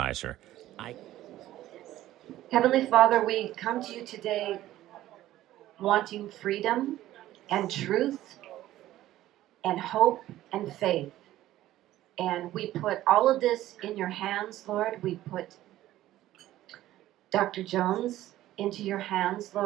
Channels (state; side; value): quieter; left; 14.5 dB